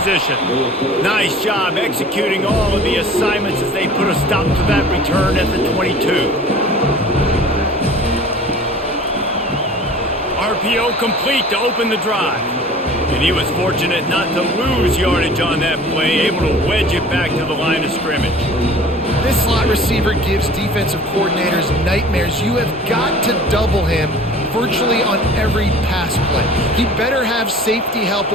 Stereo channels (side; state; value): both; normal; correlation 0.45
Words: Nice job executing all of the assignments as they put a stop to that return at the 22. RPO complete to open the drive. And he was fortunate not to lose yardage on that play, able to wedge it back to the line of scrimmage. This slot receiver gives defensive coordinators nightmares. You have got to double him, virtually on every pass play. He better have safety help